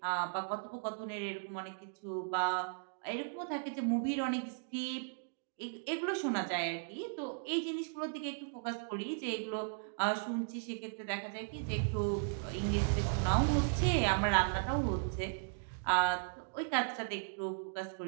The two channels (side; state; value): left; silent; digital silence